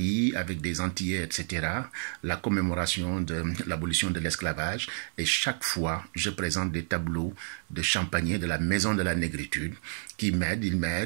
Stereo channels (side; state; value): left; silent; 58 dB below the other